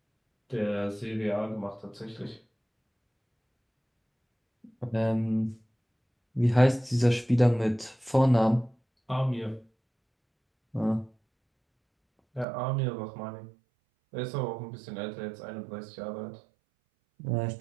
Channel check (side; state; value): left; drops out; at 12.5 s